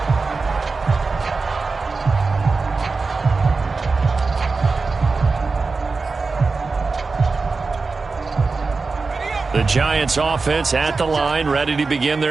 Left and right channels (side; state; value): left; quieter; 4.2 dB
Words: The Giants offense at the line, ready to begin